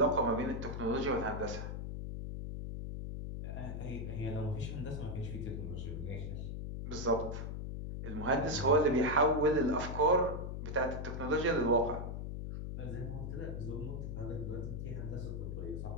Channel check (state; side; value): noise; left; hum, 5 dB below the sound